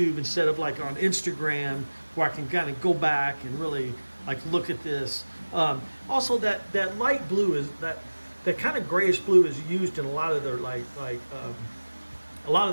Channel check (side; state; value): both; inverted; correlation -1.00